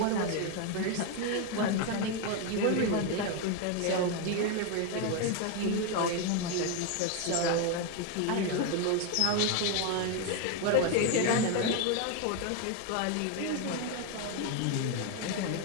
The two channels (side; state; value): both; different; correlation 0.01